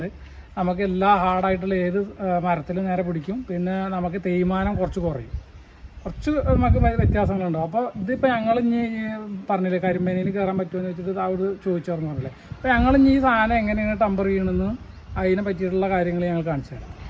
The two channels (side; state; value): both; identical; correlation 1.00